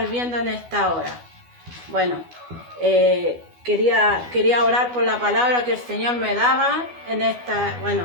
viendo en esta hora. Bueno, quería orar por la palabra que el Señor me daba en esta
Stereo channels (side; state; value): left; late; 12 ms